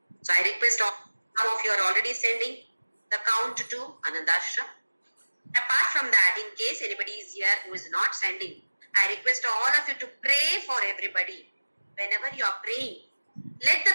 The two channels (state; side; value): inverted; both; correlation -1.00